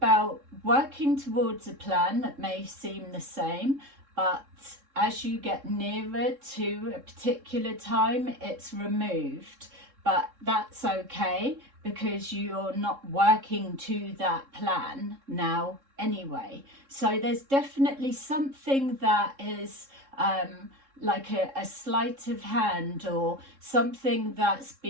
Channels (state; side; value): late; left; 3.7 ms